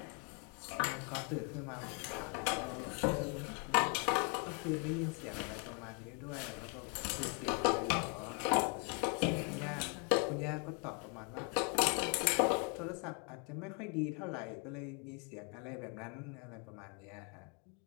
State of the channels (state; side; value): quieter; right; 35.9 dB